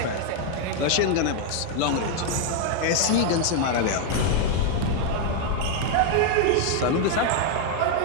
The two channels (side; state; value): both; different; correlation 0.00